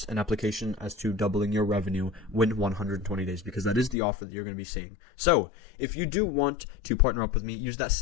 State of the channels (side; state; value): right; drops out; at 4.0 s